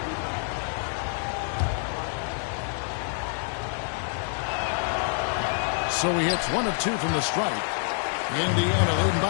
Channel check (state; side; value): silent; right; 60 dB below the other